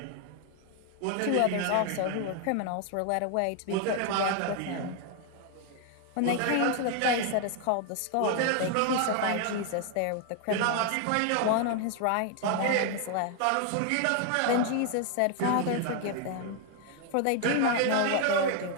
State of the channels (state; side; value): different; both; correlation 0.00